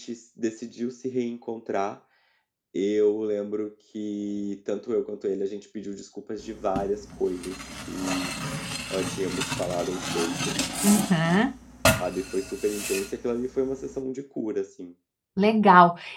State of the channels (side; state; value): both; identical; correlation 1.00